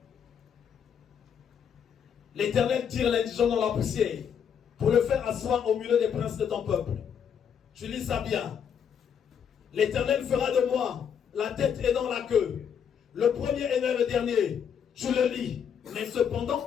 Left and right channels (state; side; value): quieter; right; 7.8 dB